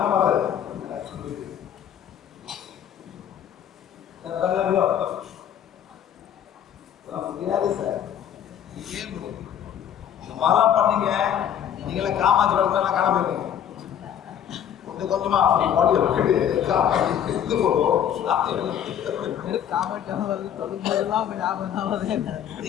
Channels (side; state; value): right; quieter; 9.6 dB